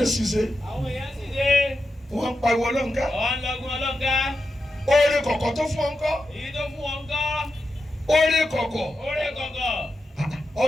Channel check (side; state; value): both; normal; correlation 0.89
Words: ń ṣiṣẹ́ àwọn èèyàn sì dé. wọ́n ń pariwo ọlọ́nká. ọ̀hún lọ́gùn ọlọ́gá. oore kọ̀kọ̀ tó fún ọ ńkọ́. èyí tó fún wọn kọ́. oore kọ̀kọ̀. oore kọ̀kọ̀.